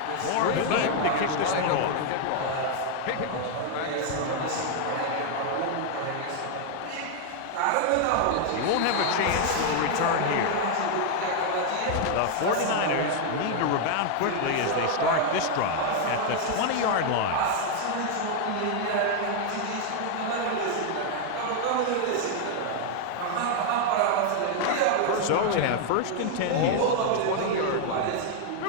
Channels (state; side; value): different; both; correlation 0.00